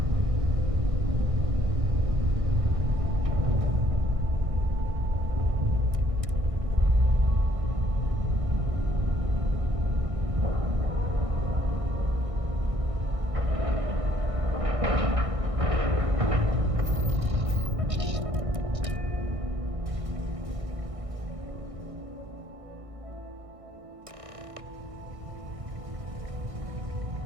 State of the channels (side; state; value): left; late; 1.6 ms